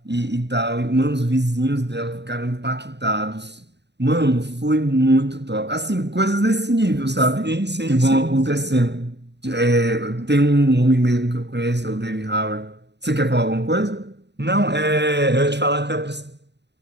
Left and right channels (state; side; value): late; left; 0.50 ms